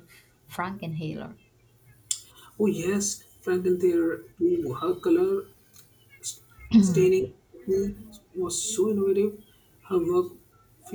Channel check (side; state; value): both; identical; correlation 1.00